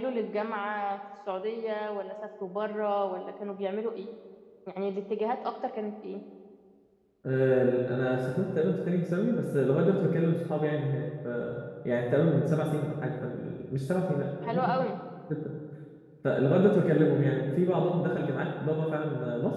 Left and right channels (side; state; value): both; identical; correlation 1.00